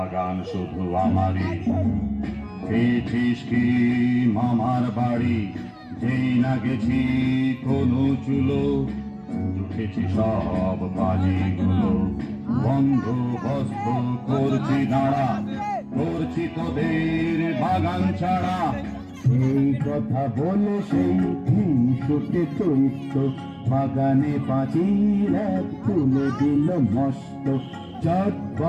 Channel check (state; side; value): identical; both; correlation 1.00